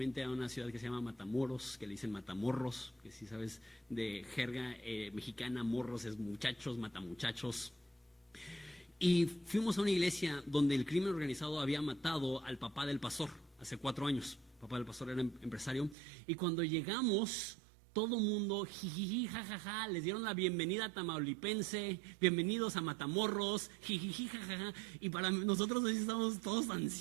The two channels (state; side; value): drops out; left; at 16.0 s